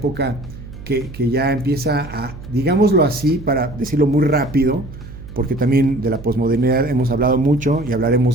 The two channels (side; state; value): right; noise; hum, 14 dB below the sound